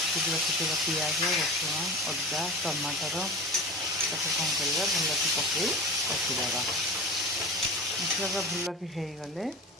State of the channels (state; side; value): normal; both; correlation 0.31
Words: रखीदा पियाज रसुण अदा टमाटर ताको कौन करवा भल कि पकई रखीदा मसला भल कि होगले